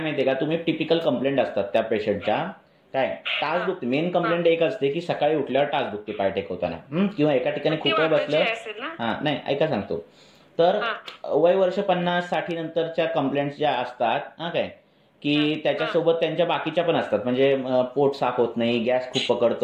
का, तुम्ही टिपिकल कंप्लेंट असतात त्या पेशंटच्या, काय टाच दुखते. मेन कंप्लेंट एक असते की सकाळी उठल्यावर टाच दुखते पाय टेकवताना, किंवा एका ठिकाणी खूप वेळ बसलं. हा नाही ऐका सांगतो. तर वय वर्ष 50-60 नंतरच्या कंप्लेंट्स ज्या असतात हा काय, की त्याच्यासोबत त्यांच्या बाकीच्या पण असतात. म्हणजे पोट साफ होत नाही, गॅस खूप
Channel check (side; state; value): both; identical; correlation 1.00